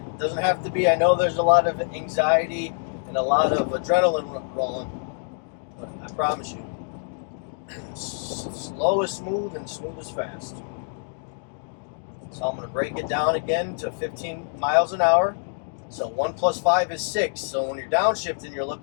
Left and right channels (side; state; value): right; silent; 61 dB below the other